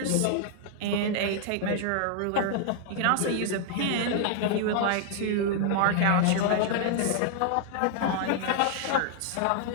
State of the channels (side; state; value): both; different; correlation 0.00